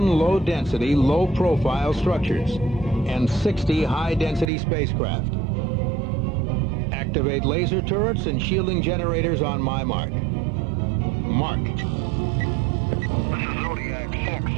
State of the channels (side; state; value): left; drops out; at 4.5 s